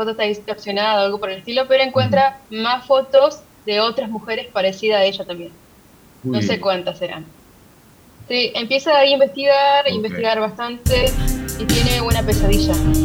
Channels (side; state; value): both; identical; correlation 1.00